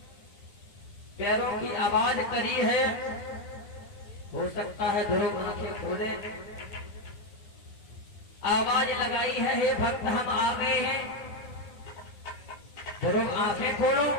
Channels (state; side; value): late; right; 9.5 ms